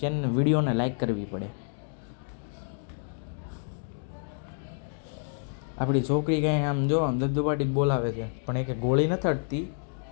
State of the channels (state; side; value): silent; right; digital silence